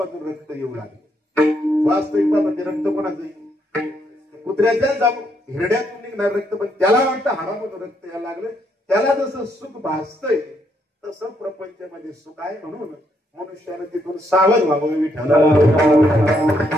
रक्त येऊ लागले. वास्तविक ते रक्त कोणाचं? कुत्र्याच्या हिरड्यातून निघणार रक्त, पण त्याला वाटतं हाडामधून रक्त यायला लागलं. त्याला जसं सुख भासतंय तसं प्रपंचामध्ये सुख आहे. म्हणून मनुष्यानं तिथून सावध व्हावं. विठ्ठल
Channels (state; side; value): normal; both; correlation 0.75